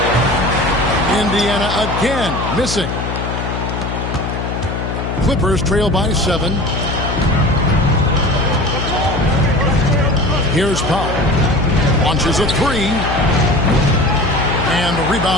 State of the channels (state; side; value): noise; left; hum, 4 dB below the sound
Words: Indiana again missing. Clippers trail by 7. Here's Powell. Launches a three. And the